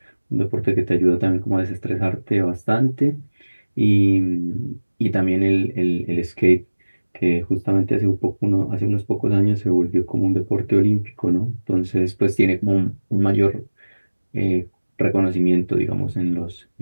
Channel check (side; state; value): both; inverted; correlation -1.00